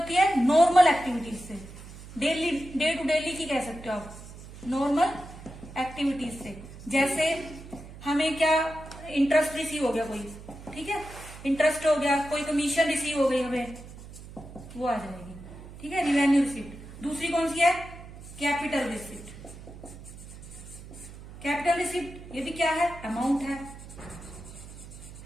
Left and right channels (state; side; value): noise; right; hum, 15 dB below the sound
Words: है, नॉर्मल एक्टिविटीज से, डेली, डे टू डेली की कह सकते हो आप, नॉर्मल एक्टिविटीज से। जैसे हमें क्या, इंटरेस्ट रिसीव हो गया कोई, ठीक है, इंटरेस्ट हो गया, कोई कमीशन रिसीव हो गई हमें, वो आ जाएगी। ठीक है, रिवेन्यू रिसिप्ट। दूसरी कौन सी है, कैपिटल रिसिप्ट। कैपिटल रिसिप्ट ये भी क्या है, अमाउंट है,